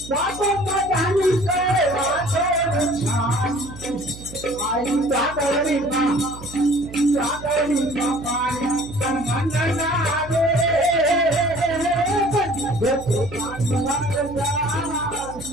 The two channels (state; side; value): noise; right; hum, 15 dB below the sound